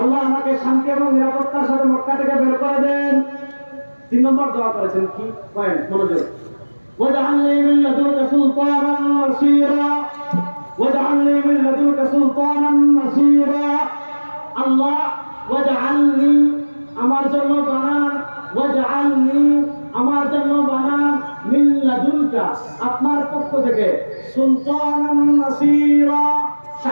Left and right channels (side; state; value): both; inverted; correlation -1.00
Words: আমাকে শান্তি এবং নিরাপত্তার সাথে মক্কা থেকে বের করে দেন। তিন নম্বর দোয়া করেছেন, কি পয়েন্ট? মনোযোগ। ওয়াজআলনি মিন লাদুনকা সুলতানান নাসীরা, ওয়াজআলনি মিন লাদুনকা সুলতানান নাসীরা। আল্লাহ ওয়াজআলনি আমার জন্য বানান, ওয়াজআলনি আমার জন্য বানান, মিন লাদুনকা আপনার পক্ষ থেকে, সুলতানান নাসীরা